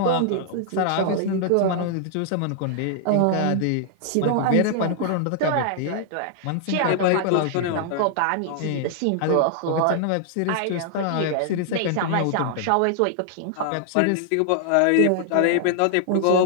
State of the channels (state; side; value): different; both; correlation -0.01